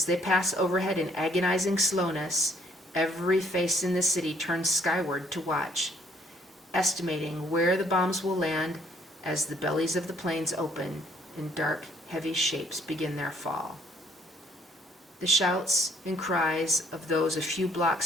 they pass overhead in agonizing slowness, every face in the city turns skyward to watch, estimating where the bombs will land as the bellies of the planes open and dark, heavy shapes begin their fall. The shouts and cries of those a few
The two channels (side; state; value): both; normal; correlation 0.64